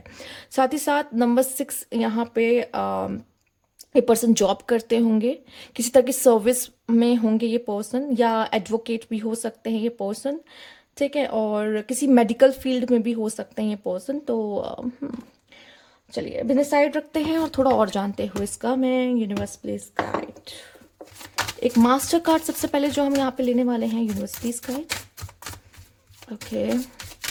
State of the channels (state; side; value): identical; both; correlation 1.00